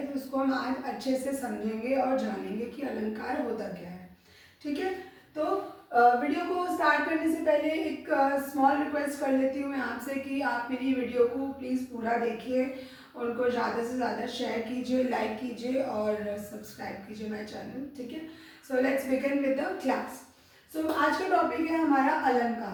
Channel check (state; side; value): identical; both; correlation 1.00